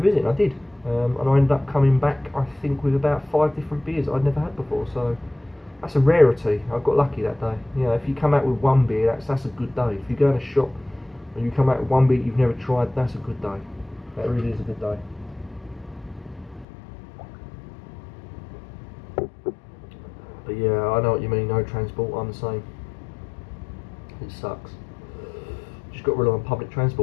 and I did. And I ended up coming back, I think, with about 5 different beers that I'd never had before. So that's a rarity. I got lucky that day. You know, if you come out with one beer, that's a good day. If you go in a shop and you come out with one beer you've never tried, that's a good day. That really is a good day. But yeah, I know what you mean. No transport. I'm the same. It sucks. Just got to rely on public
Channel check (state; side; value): drops out; right; at 16.7 s